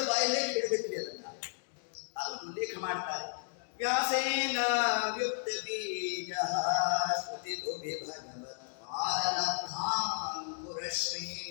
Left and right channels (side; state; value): right; silent; digital silence